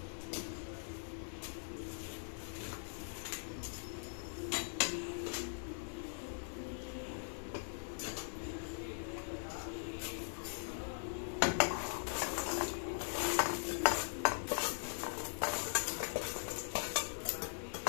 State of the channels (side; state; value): right; silent; digital silence